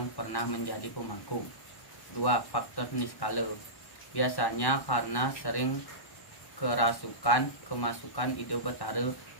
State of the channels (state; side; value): late; right; 1.1 ms